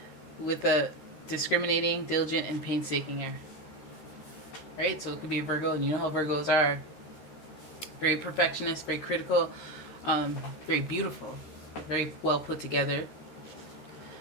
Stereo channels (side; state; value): right; late; 13 ms